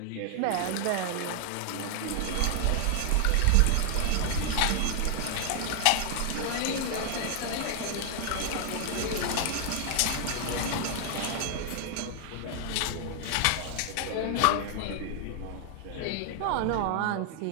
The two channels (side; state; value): both; different; correlation 0.00